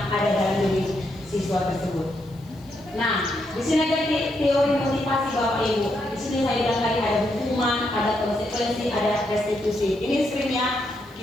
ada dalam diri siswa tersebut. Nah, di sini ada teori motivasi Bapak Ibu. Di sini saya bilang tadi ada hukuman, ada konsekuensi, ada restitusi. Ini screennya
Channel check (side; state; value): left; noise; hiss, 29 dB below the sound